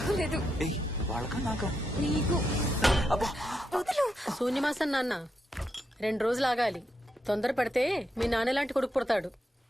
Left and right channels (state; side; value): normal; both; correlation 0.83